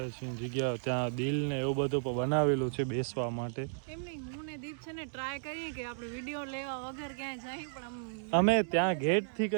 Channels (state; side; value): silent; left; digital silence